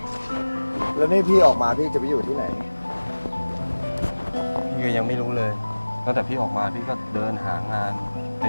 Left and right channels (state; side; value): inverted; both; correlation -1.00